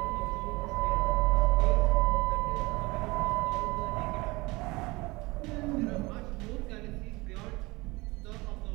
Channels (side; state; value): left; quieter; 23.2 dB